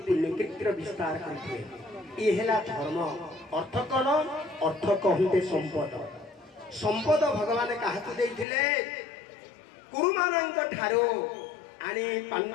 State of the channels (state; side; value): drops out; right; at 8.5 s